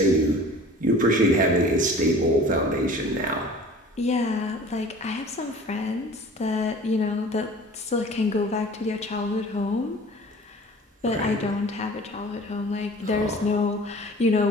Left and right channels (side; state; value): both; normal; correlation 0.44